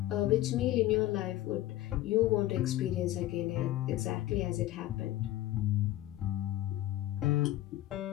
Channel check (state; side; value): quieter; right; 15.0 dB